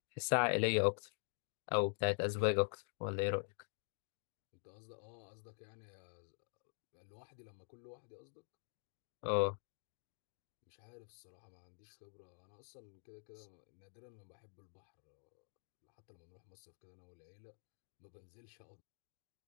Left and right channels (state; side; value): silent; right; digital silence